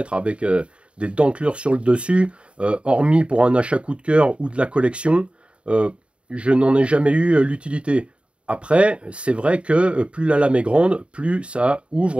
avec des dentelures sur le dessus, hormis pour un achat coup de cœur ou de la collection, je n'en ai jamais eu l'utilité. Après, c'est vrai que plus la lame est grande, plus ça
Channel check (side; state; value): left; late; 0.058 ms